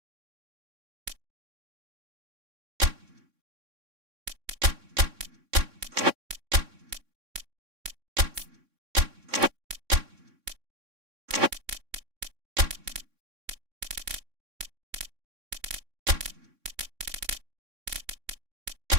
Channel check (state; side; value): late; left; 3.6 ms